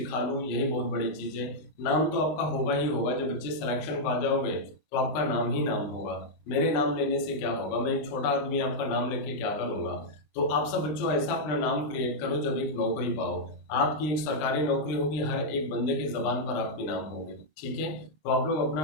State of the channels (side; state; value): right; late; 20 ms